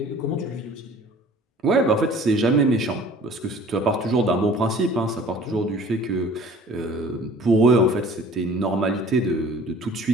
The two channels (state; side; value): normal; both; correlation 0.48